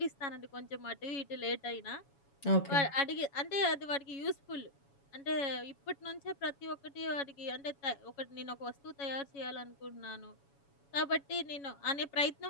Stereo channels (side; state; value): right; late; 7.1 ms